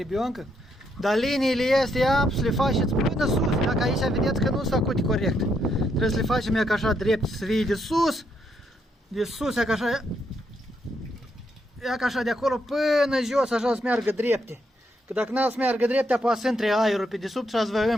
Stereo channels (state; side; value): normal; both; correlation 0.77